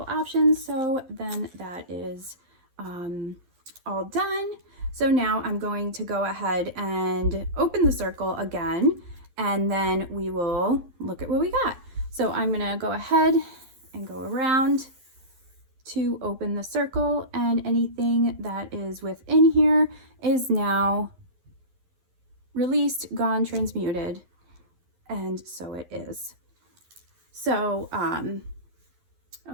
options. So then that is all done. So now I'm going to go ahead and open the circle again, and then we will look at what we got. So I'm gonna go ahead and go around to open the circle, and anything that is within here is now released, gone, transmuted, and so it is. So,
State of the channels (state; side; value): late; left; 12 ms